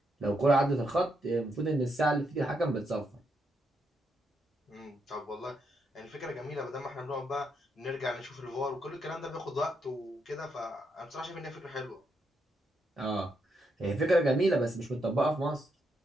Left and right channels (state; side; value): normal; both; correlation 0.79